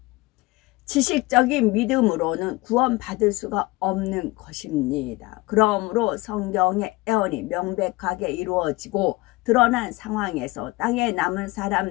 지식적인 믿음으로는 구원받을 수가 없는 것입니다. 그러므로 성경의 예언이 명백하게 이루어지고 드러난 상황에서 땅에 남은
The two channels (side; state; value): right; quieter; 21.7 dB